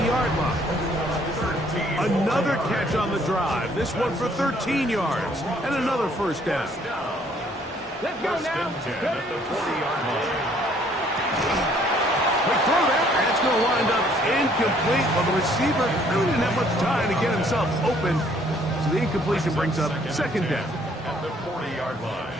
line. Another catch on the drive. This one for 13 yards. And another first down. Let's go First now. and 10 at the 40-yard line. Quick throw there. And it's going to wind up incomplete. Well, the receiver really didn't have much time to get himself open. So the incompletion brings up second down. At the 40-yard line.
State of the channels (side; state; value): both; normal; correlation 0.62